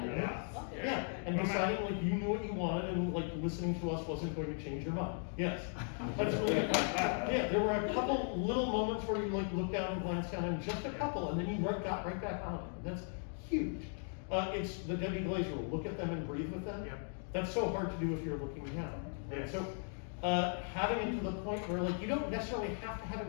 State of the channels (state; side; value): silent; right; 53 dB below the other